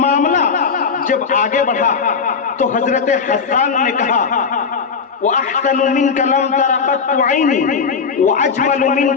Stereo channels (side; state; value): right; quieter; 5.6 dB